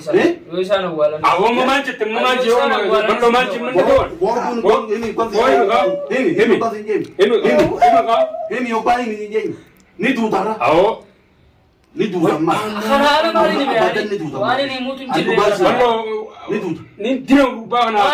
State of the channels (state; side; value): identical; both; correlation 1.00